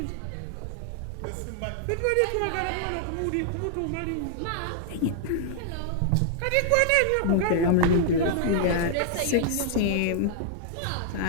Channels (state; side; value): different; both; correlation -0.01